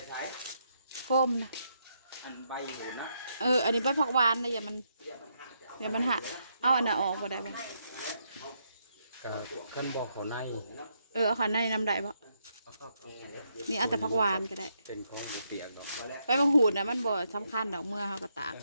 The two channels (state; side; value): inverted; both; correlation -0.78